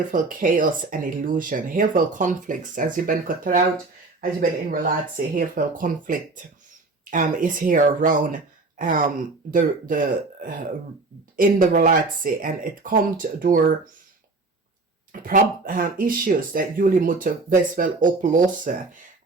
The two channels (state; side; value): quieter; left; 3.5 dB